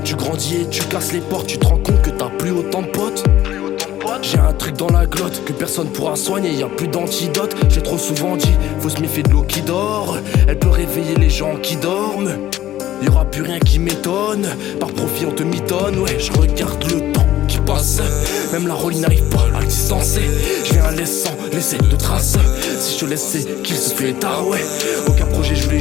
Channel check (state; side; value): quieter; right; 13.3 dB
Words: Tu grandis et tu casses les portes, tu te rends compte que t'as plus autant de potes. J'ai un truc dans la glotte que personne pourra soigner, y a plus d'antidote. J'ai trop souvent dit, faut se méfier de l'eau qui dort. Elle peut réveiller les gens qui dorment. Y aura plus rien qui m'étonne. Par profit on te mitonne, ouais, je regarde le temps qui passe. Même la rollie n'arrive pas à le distancer. Je viens laissant laisser de traces. Si je te laisse c'est qu'il se fait tard, ouais. Aucun projet, je voulais